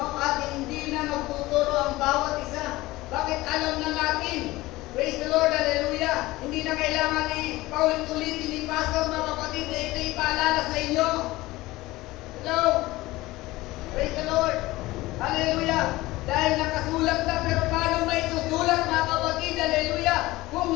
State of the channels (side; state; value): right; quieter; 19.1 dB